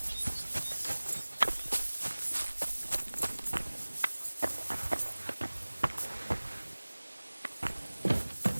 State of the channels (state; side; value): inverted; both; correlation -1.00